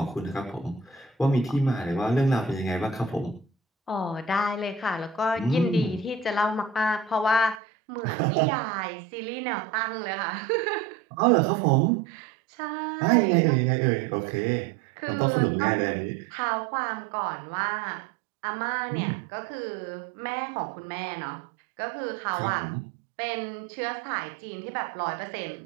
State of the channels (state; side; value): drops out; left; at 7.6 s